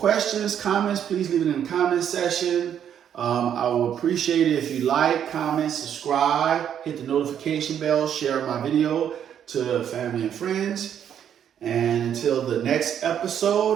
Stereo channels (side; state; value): left; quieter; 9.2 dB